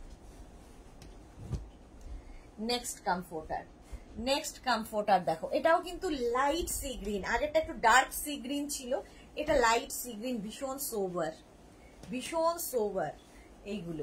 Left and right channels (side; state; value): both; identical; correlation 1.00